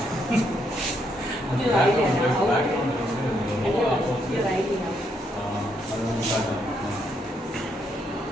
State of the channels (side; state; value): both; normal; correlation 0.75